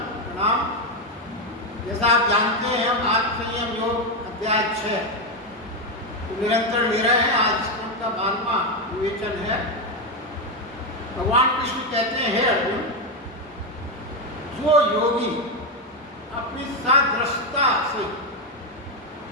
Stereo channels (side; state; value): both; normal; correlation 0.07